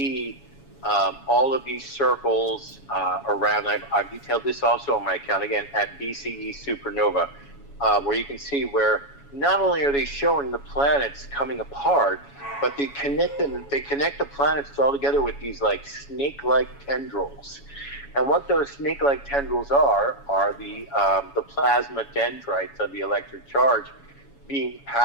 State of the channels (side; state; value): right; late; 7.1 ms